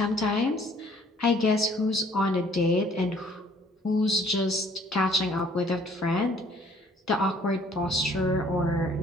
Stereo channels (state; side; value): normal; both; correlation 0.58